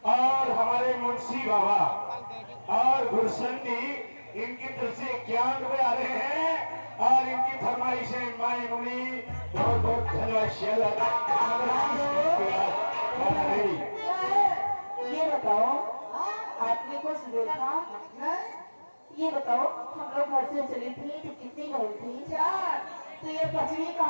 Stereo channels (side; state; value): both; inverted; correlation -1.00